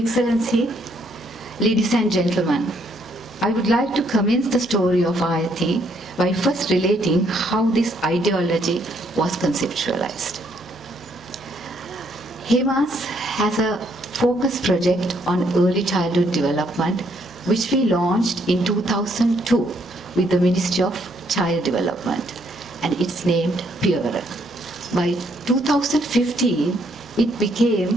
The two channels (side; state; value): both; normal; correlation 0.70